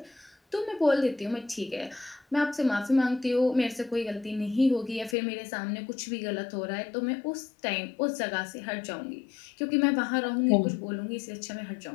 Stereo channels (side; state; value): right; drops out; at 5.2 s